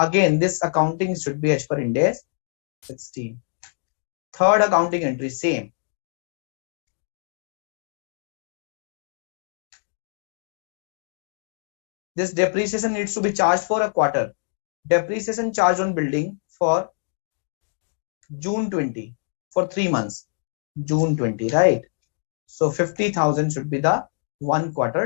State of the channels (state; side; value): silent; right; digital silence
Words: this accounting should be as per Ind AS 16. Third accounting entry, same. This depreciation needs to be charged for a quarter. Depreciation charge on building for June 20, for 3 months. June 20, right? So 50,000 should be the 1